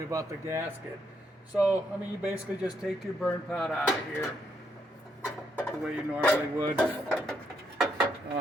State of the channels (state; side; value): normal; both; correlation 0.76